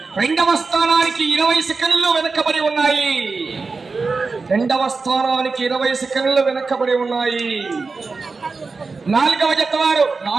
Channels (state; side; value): quieter; left; 4.2 dB